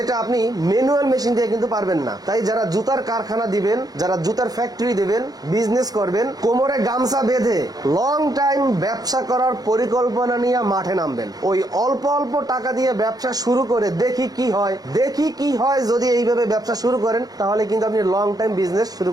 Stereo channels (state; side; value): late; left; 0.19 ms